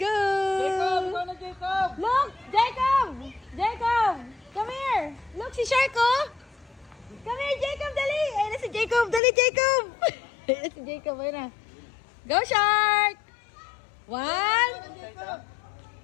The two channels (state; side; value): drops out; right; at 9.2 s